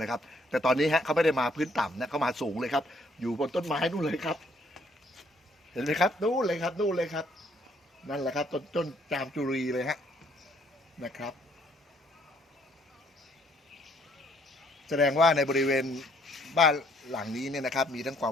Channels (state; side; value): normal; both; correlation 0.65